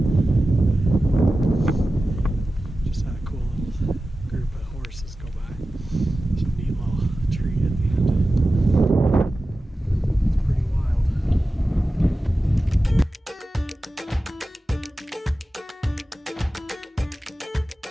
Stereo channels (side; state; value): both; normal; correlation 0.94